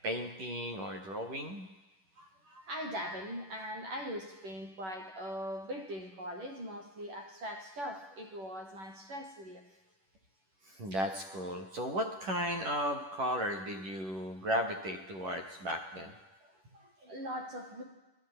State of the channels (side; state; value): left; late; 11 ms